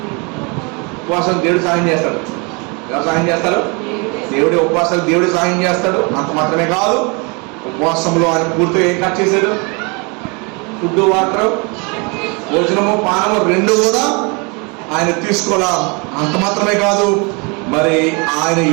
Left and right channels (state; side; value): quieter; left; 30.9 dB